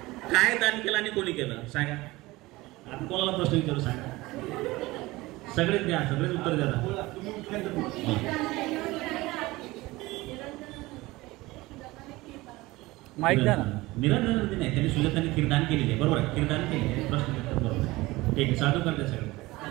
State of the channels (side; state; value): left; quieter; 20.3 dB